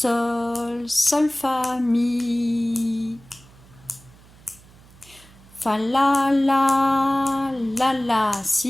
fa, mi. Fa, la,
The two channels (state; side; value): noise; right; hum, 25 dB below the sound